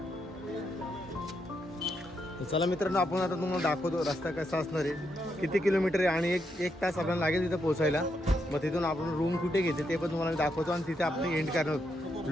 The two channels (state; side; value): normal; both; correlation 0.80